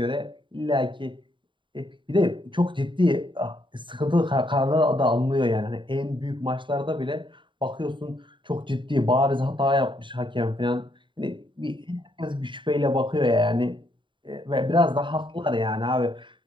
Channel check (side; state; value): left; late; 0.23 ms